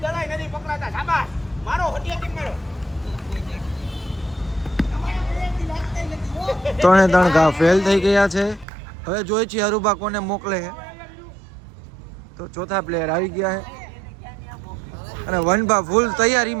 3 ઘા ફેલ થઈ ગયા છે. હવે જોઈ છીએ અરુબા કોને મોકલે છે. તો ચોથા પ્લેયર આવી ગયા છે અને વનબા ફૂલ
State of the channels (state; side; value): drops out; left; at 8.7 s